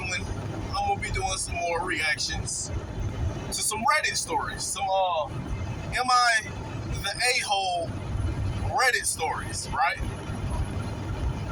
one. I'm gonna be doing some more reactions to some Reddit stories. Some am I the a-hole Reddit stories, right?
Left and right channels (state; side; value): identical; both; correlation 1.00